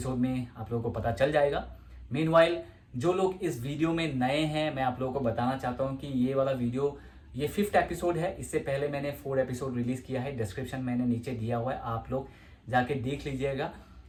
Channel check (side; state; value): both; identical; correlation 1.00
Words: में आप लोगों को पता चल जाएगा। मीनवाइल, जो लोग इस वीडियो में नए हैं, मैं आप लोगों को बताना चाहता हूँ कि ये वाला वीडियो, ये 5th एपिसोड है। इससे पहले मैंने 4 एपिसोड रिलीज किया है, डिस्क्रिप्शन मैंने नीचे दिया हुआ है, आप लोग जाके देख लीजिएगा।